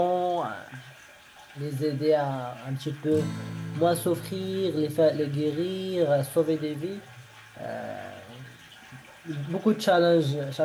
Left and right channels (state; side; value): identical; both; correlation 1.00